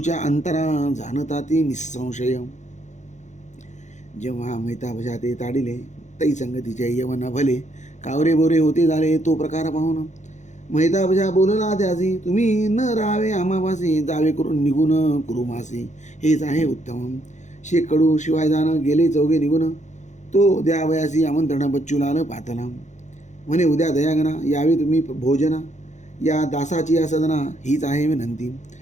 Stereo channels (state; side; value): late; right; 0.34 ms